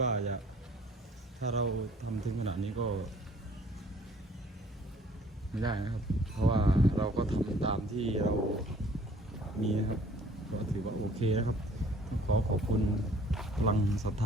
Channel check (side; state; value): both; normal; correlation 0.56